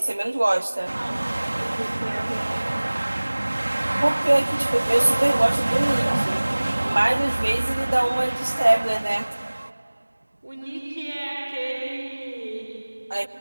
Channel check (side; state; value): both; inverted; correlation -1.00